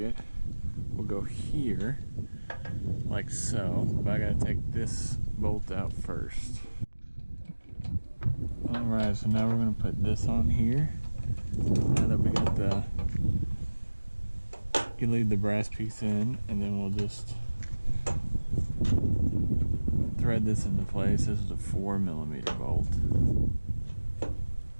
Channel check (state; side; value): inverted; both; correlation -1.00